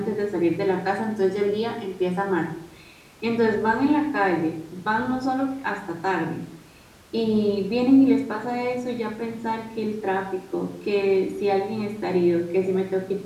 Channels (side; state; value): both; identical; correlation 1.00